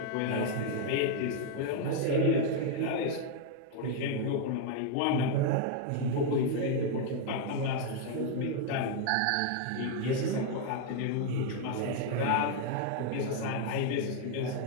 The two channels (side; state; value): both; different; correlation 0.00